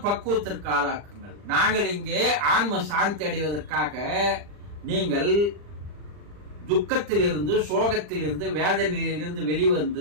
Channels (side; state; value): left; late; 40 ms